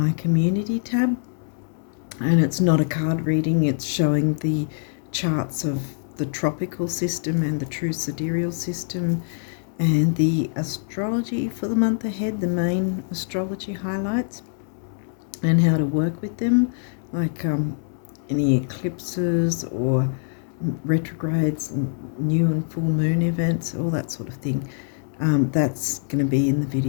community tab, and it's not a card reading, it's showing the charts of the tropical system and the true sidereal system and the astrology for the month ahead, the main astrology highlights and how to work with them, like any eclipses or retrogrades, new and full moon events, all that sort of thing. That's going to be in the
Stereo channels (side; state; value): right; silent; 63 dB below the other